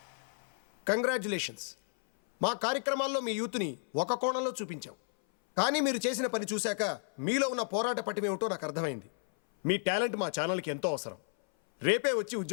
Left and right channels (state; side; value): silent; right; 56 dB below the other